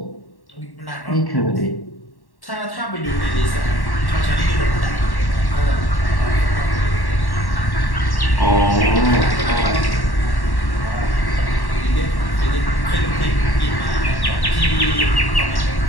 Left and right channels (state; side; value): late; right; 1.1 ms